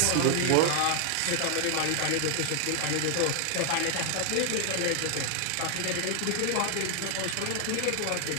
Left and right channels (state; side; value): different; both; correlation 0.00